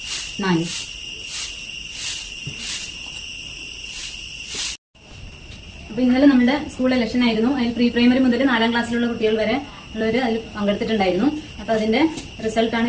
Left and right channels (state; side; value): identical; both; correlation 1.00